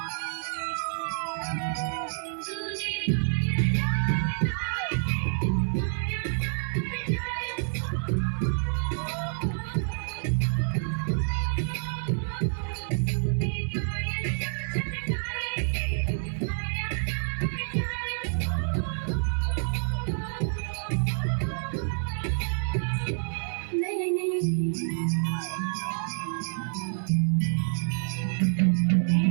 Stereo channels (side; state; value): left; silent; digital silence